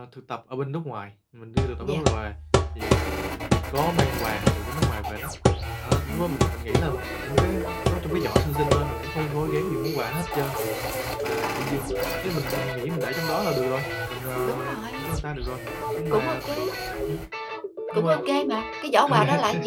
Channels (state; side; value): identical; both; correlation 1.00